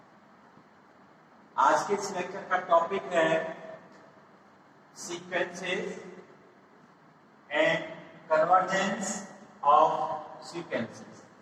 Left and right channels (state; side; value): identical; both; correlation 1.00